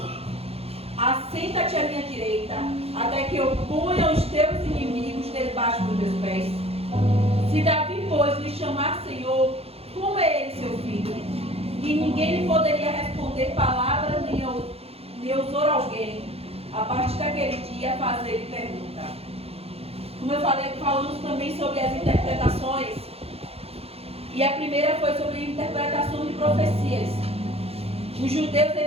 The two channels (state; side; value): late; left; 0.29 ms